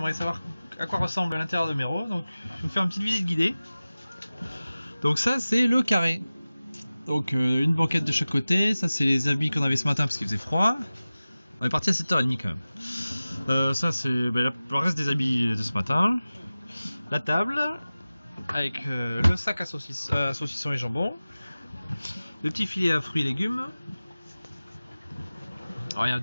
savoir à quoi ressemble l'intérieur de Mero, donc je vais vous faire une petite visite guidée. Donc ça c'est le carré. Donc une banquette de chaque côté, ça c'est les habits qu'on avait ce matin parce qu'il faisait froid. On est parti à 7h30 quand même. Ça c'est le reste des habits de ce matin. La table, avec le sac à saucissons et jambon. Le petit filet à fruits et légumes. Alors il y a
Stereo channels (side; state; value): both; inverted; correlation -0.97